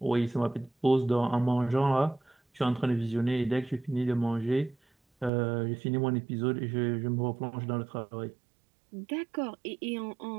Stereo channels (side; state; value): left; drops out; at 5.3 s